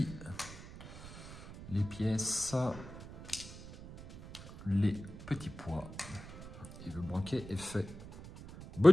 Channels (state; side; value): noise; right; rumble, 14 dB below the sound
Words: Les pièces, les petits pois. Et le banquet est fait.